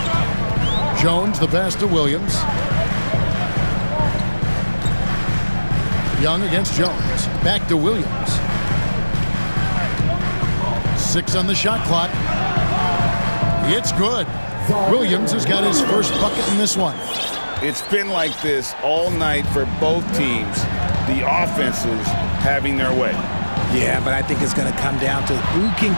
Jones, the pass to Williams. Young against Jones. Back to Williams. 6 on the shot clock. It's good. Williams has got his first bucket in this one. It's been like this all night for both teams. The offenses having their way. Yeah, but I think it's going to come down to who can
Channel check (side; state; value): both; inverted; correlation -1.00